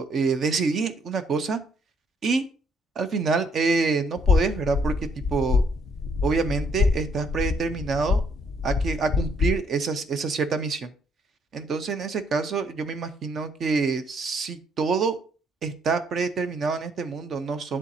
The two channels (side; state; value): both; normal; correlation 0.69